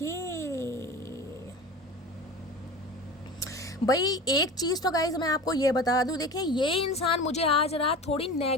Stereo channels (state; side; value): normal; both; correlation 0.33